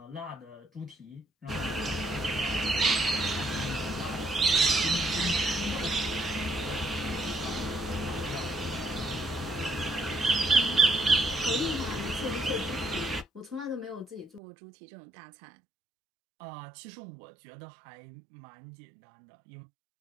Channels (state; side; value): drops out; left; at 14.4 s